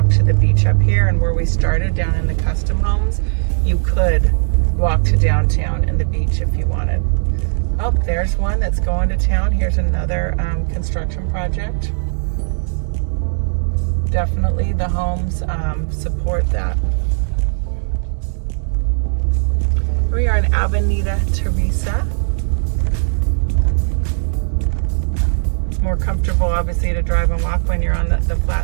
to the beach up here, and where we started down in the custom homes, you could walk to downtown and the beach if you wanted. Oh, there's one that's going to town. Here's another construction project. Definitely the homes support that. We are in Avenida Teresa. More comfortable, obviously, to drive and walk when you're on the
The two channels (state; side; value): silent; left; digital silence